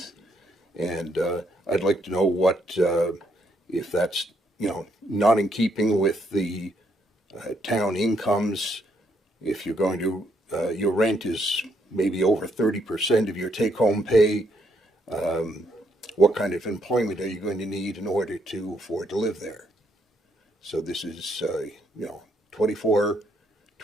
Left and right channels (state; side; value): normal; both; correlation 0.73